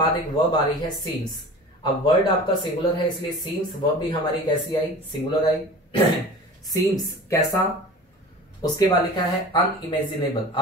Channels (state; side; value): normal; both; correlation 0.38